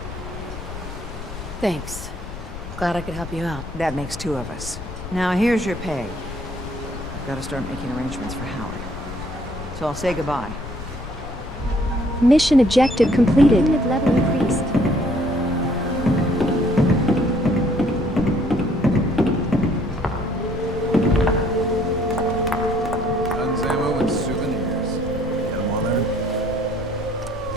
Thanks. Glad I could help you out. That makes two of us. Now here's your pay. I've got to start making arrangements for Howard. So I'll say goodbye. Mission objective completed. Unit level increased. Guns, ammo, and souvenirs. Get them all there?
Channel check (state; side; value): noise; left; rumble, 11 dB below the sound